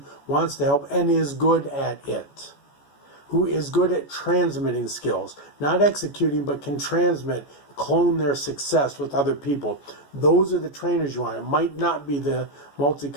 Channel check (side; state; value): right; late; 14 ms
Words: wants to help, and is good at it. Who is good at transmitting skills. Not executing, but can transmit, clone their success with other people. Those are the trainers you want. It might not be the